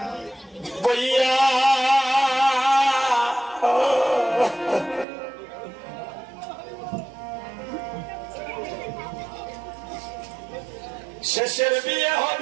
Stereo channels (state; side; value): drops out; left; at 5.1 s